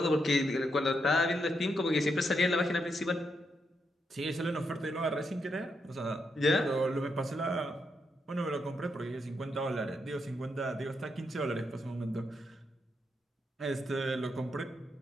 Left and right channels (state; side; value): normal; both; correlation 0.81